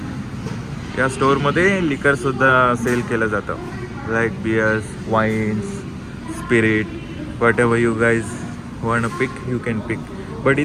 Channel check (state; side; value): identical; both; correlation 1.00